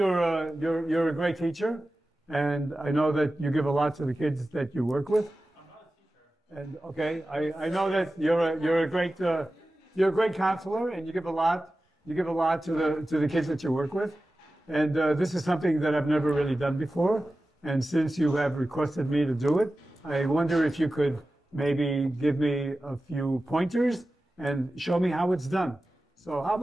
a great teacher, and I know that you give a lot to the kids that you work with. I'm not a teacher. And okay, I know that you're a great counselor, and you give a lot to the kids that you work with. And this is something that I've never really done before. And since you have requested me to do it, I wonder if you could maybe give me a few pointers and show me how it's done. So how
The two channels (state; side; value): normal; both; correlation 0.95